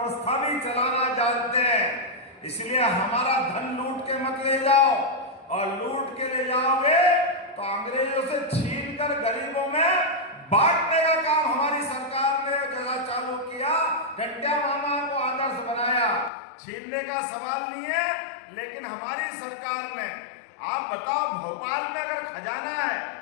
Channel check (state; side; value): drops out; right; at 16.3 s